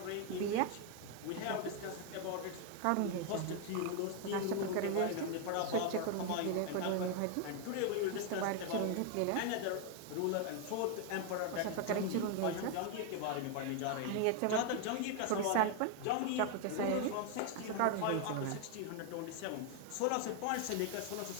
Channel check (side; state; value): both; different; correlation 0.01